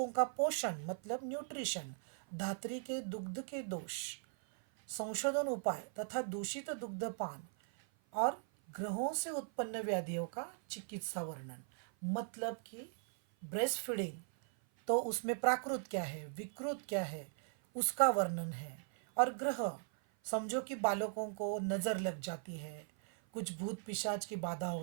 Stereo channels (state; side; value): silent; left; 52 dB below the other